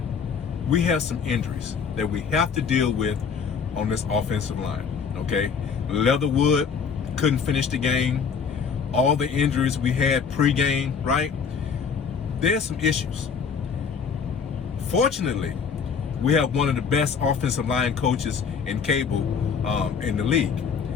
we have some injuries that we have to deal with on this offensive line, okay? Leatherwood couldn't finish the game. All the injuries we had pre-game, right? There's some issues. Fortunately, we have one of the best offensive line coaches in cable in the league,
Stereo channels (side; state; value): right; quieter; 6.1 dB